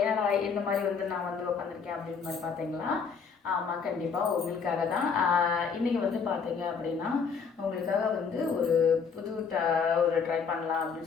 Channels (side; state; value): right; quieter; 5.9 dB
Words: ஏன்னா இந்த மாதிரி நான் உட்காந்துருக்கேன் அப்படின்னு மாதிரி பார்த்தீங்களா? ஆமாம், கண்டிப்பாக உங்களுக்காக தான். இன்றைக்கி பார்த்தீங்க அப்படின்னா உங்களுக்காக ஒரு புது ஒரு ட்ரை பண்ணலாம்